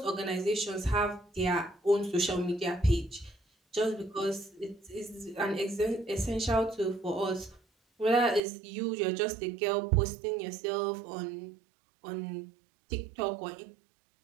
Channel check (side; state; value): left; drops out; at 8.4 s